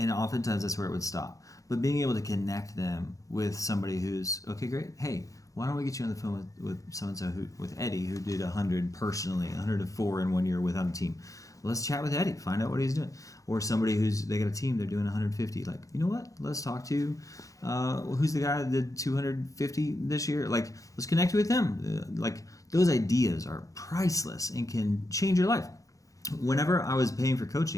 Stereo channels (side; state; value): right; late; 0.16 ms